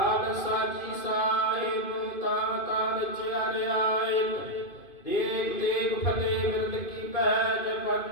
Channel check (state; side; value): late; right; 2.5 ms